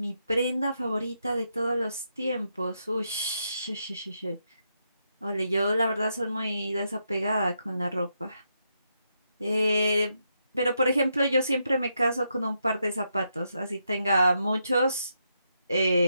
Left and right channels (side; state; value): both; inverted; correlation -0.81